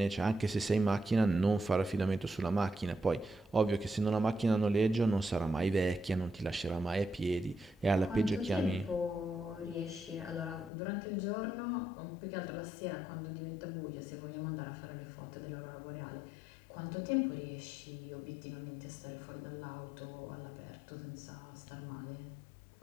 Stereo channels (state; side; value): drops out; right; at 10.7 s